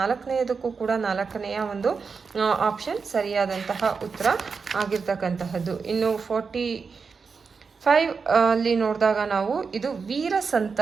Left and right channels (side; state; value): left; quieter; 5.2 dB